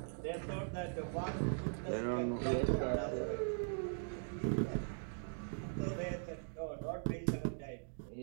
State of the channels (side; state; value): left; silent; digital silence